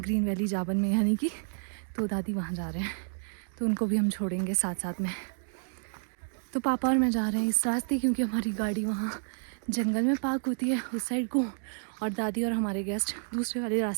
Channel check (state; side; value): silent; left; digital silence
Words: ग्रीन वैली जाबन में यानी कि। तो दादी वहाँ जा रहे हैं तो उनको भी हम छोड़ेंगे साथ साथ में। तो पापा और मैं जा रहे हैं इस रास्ते क्योंकि हमारी गाड़ी वहाँ जंगल में पार्क होती है उस साइड को, और दादी और हमारे गेस्ट दूसरे वाले